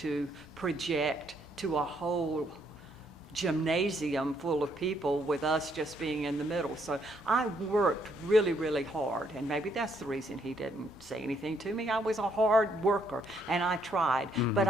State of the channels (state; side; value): normal; both; correlation 0.71